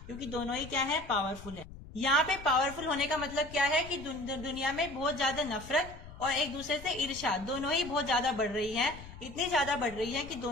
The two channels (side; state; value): left; noise; rumble, 15 dB below the sound